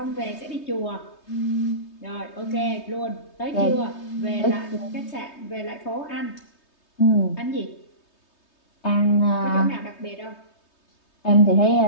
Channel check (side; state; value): right; late; 3.2 ms